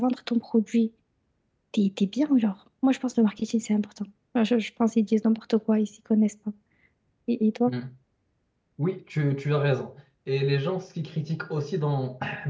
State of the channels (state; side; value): identical; both; correlation 1.00